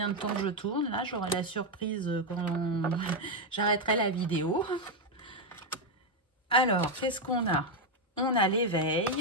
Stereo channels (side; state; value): both; normal; correlation 0.04